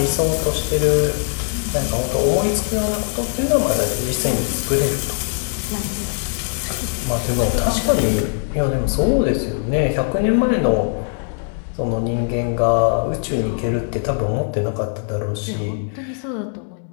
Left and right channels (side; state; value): right; silent; 57 dB below the other